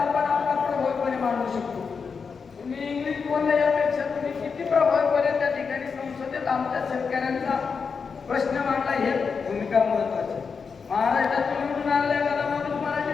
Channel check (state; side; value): quieter; right; 5.5 dB